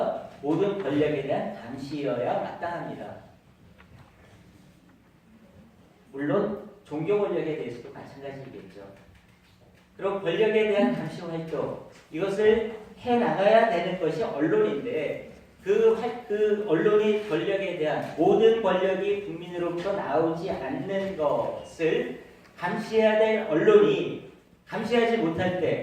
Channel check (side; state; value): both; identical; correlation 1.00